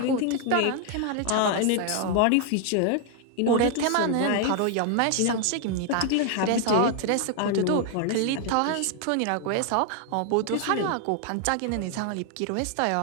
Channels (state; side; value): different; both; correlation 0.00